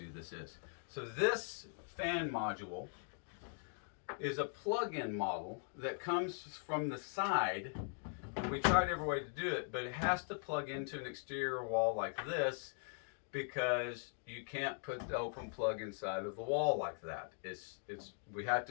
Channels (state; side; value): silent; right; 51 dB below the other